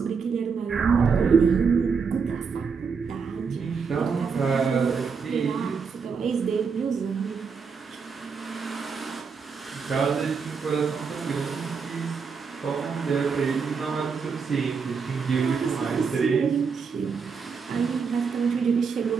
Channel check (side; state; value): left; quieter; 5.6 dB